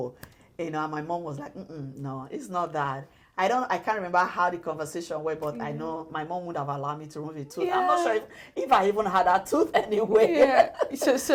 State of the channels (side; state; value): both; identical; correlation 1.00